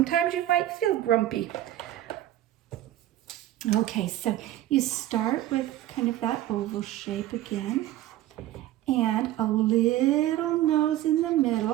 you might feel grumpy. Okay, so you start with kind of that oval shape again, and a little nose in the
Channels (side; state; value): left; quieter; 13.8 dB